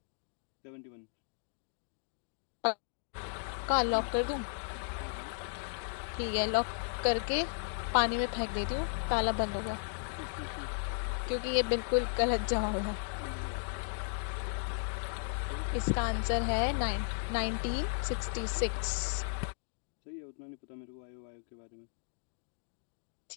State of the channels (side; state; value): right; silent; digital silence